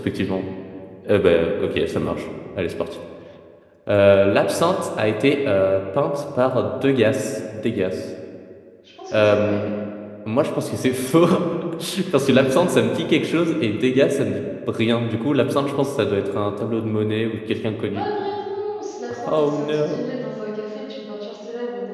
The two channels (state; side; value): identical; both; correlation 1.00